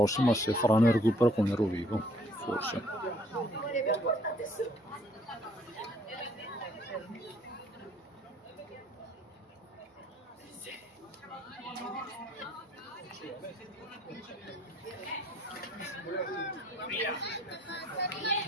se faranno il recupero con il Rovigo, forse.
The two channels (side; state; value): both; normal; correlation 0.60